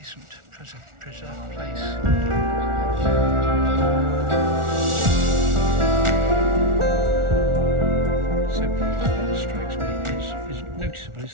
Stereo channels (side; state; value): left; late; 1.4 ms